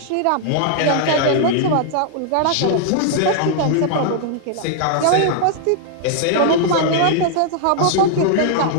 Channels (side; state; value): both; different; correlation -0.01